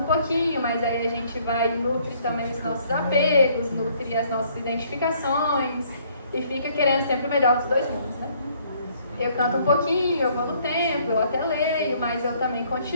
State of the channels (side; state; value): both; inverted; correlation -0.63